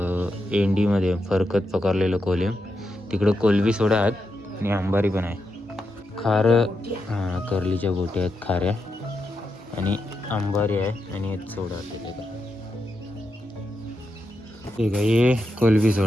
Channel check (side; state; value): both; normal; correlation 0.85